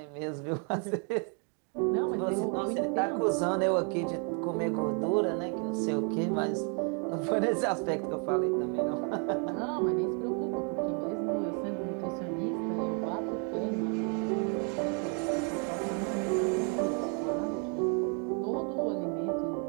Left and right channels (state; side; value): quieter; left; 39.2 dB